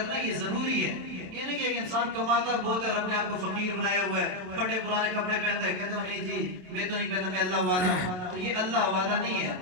یہ ضروری ہے. یہ نہیں کہ ایک انسان کماتا بہت ہے اور اپنے آپ کو فقیر بنایا ہوا ہے, پھٹے پرانے کپڑے پہنتا ہے, کہتے ہو نہیں جی میں تو نہیں پہنتا, میں اللہ والا ہوں. تو یہ اللہ والا نہیں ہے,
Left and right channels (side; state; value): left; late; 27 ms